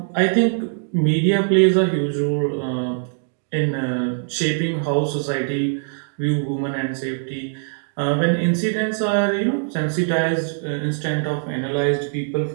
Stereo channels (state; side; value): silent; left; digital silence